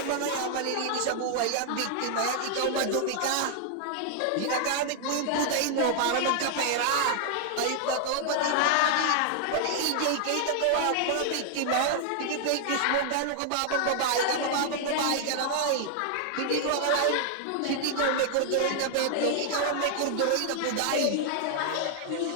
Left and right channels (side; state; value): both; different; correlation 0.00